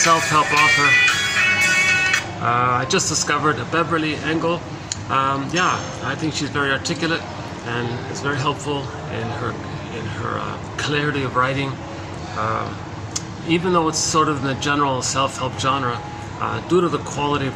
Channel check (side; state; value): both; identical; correlation 1.00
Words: author. I just discovered Beverly Engel. I think she's very articulate and it's very helpful in her clarity of writing. Even though it's sort of in the general self-help genre, due to the quality of